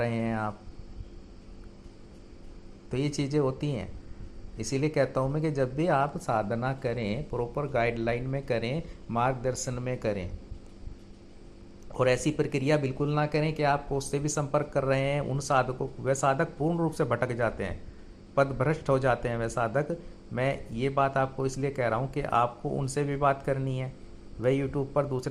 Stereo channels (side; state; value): both; identical; correlation 1.00